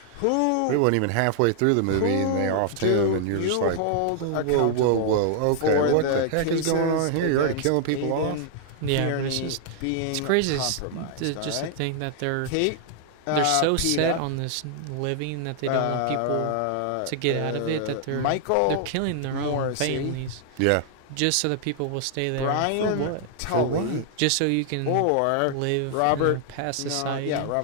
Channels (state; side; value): different; both; correlation 0.00